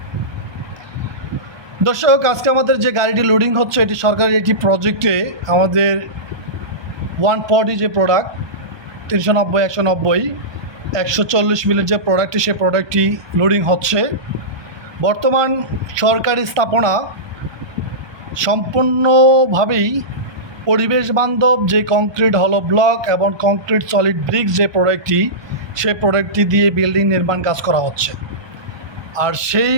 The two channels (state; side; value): late; left; 1.2 ms